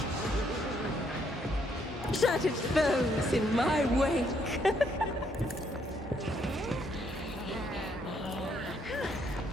Shattered foes in my wake.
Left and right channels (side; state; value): both; normal; correlation 0.71